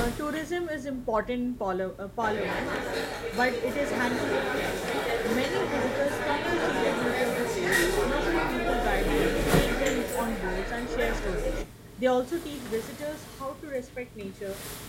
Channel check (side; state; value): both; identical; correlation 1.00